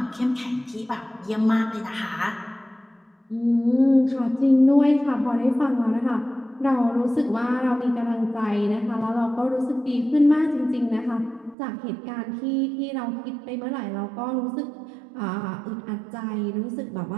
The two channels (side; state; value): left; drops out; at 11.6 s